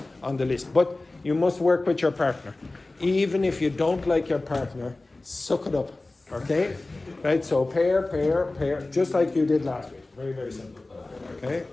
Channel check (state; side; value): quieter; right; 3.0 dB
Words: on the list. But you must work with your partner. Even if you don't like your partner, suck it up. Okay? Right, so pair, just like you did last week. Very, very simple. Okay,